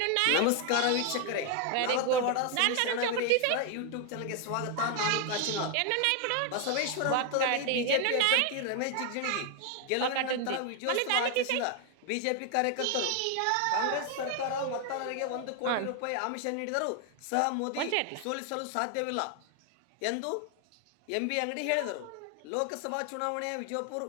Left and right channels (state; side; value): different; both; correlation 0.00